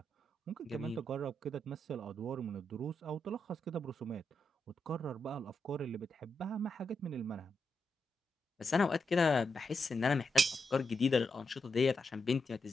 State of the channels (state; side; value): normal; both; correlation 0.84